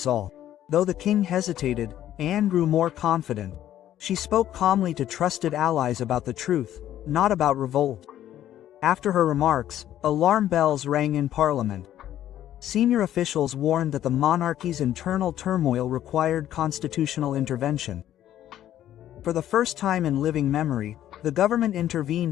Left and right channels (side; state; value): right; quieter; 12.0 dB